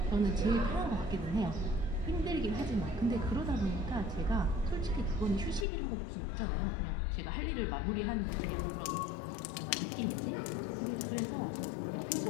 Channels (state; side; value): drops out; right; at 5.7 s